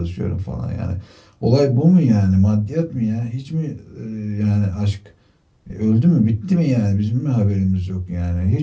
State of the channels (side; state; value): both; identical; correlation 1.00